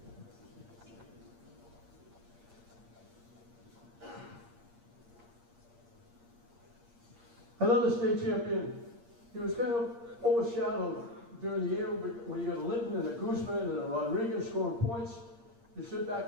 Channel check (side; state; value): left; late; 8.6 ms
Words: Another state champion. He was kind of overshadowed during the year when you got a Linton and a Guzman and a Rodriguez scoring points. You sit back